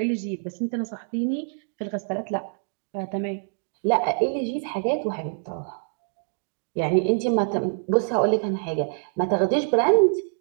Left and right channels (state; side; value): silent; left; digital silence